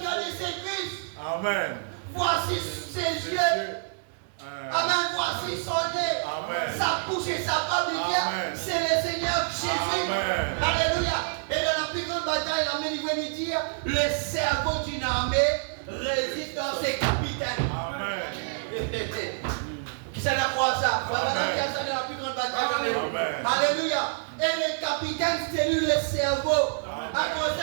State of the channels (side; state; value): left; silent; digital silence